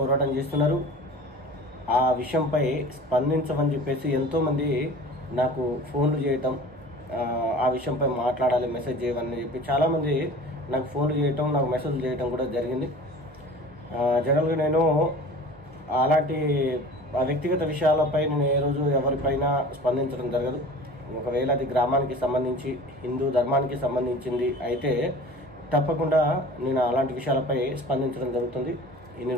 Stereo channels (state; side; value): normal; both; correlation 0.41